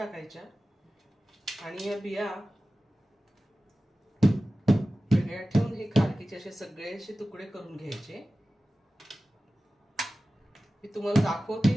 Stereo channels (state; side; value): normal; both; correlation 0.95